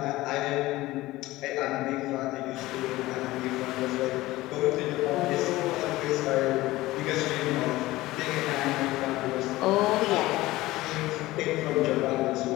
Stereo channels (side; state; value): right; quieter; 18.1 dB